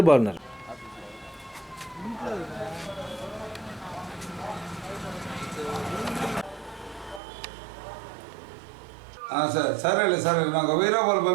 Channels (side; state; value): left; drops out; at 7.2 s